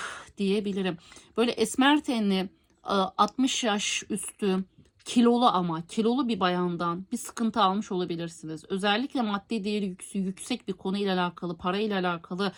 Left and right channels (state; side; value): identical; both; correlation 1.00